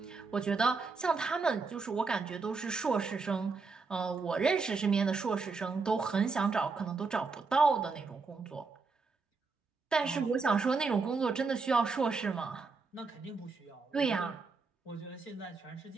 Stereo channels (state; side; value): quieter; left; 4.4 dB